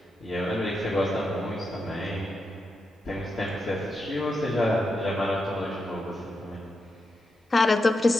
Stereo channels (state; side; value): normal; both; correlation 0.86